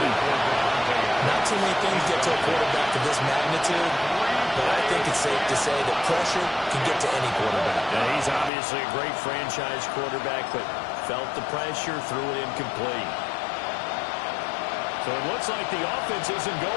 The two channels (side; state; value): right; drops out; at 8.5 s